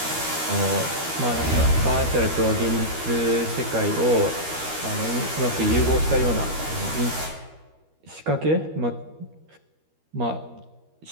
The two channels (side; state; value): left; late; 13 ms